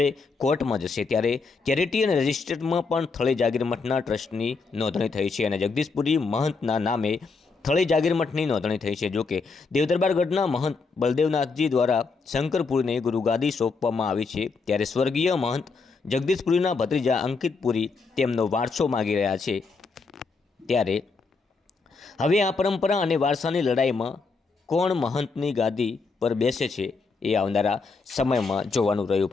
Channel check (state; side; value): quieter; right; 4.4 dB